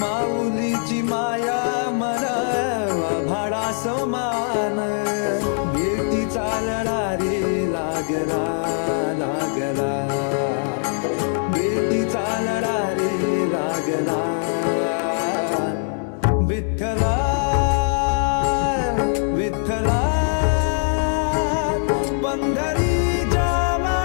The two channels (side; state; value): right; silent; digital silence